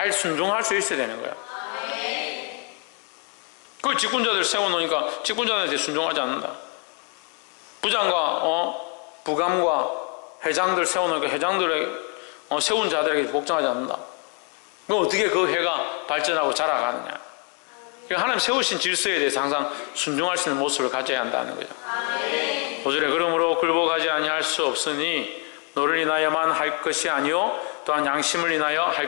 순종할 수 있어야 되는 거예요. 그 직분자들 세워놓으니까 직분자들한테 순종하지 않는다. 부장과 부감과 회장들 세워놓으니까 회장들의 세운 자들에게 복종하지 않는다. 그럼 어떻게 그 회가 발전하고 자라가느냐. 하나님 세우신 질서에 대해서 항상 순종할 수 있는 모습을 가져야 한다는 거죠. 5절에 그러므로 굴복하지 아니할 수 없으니 너를 인하여만 할 것이 아니요 또한 양심을 인하여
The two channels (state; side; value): quieter; right; 34.0 dB